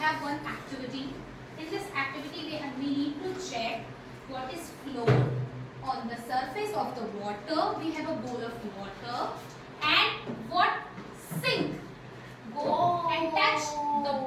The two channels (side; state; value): both; identical; correlation 1.00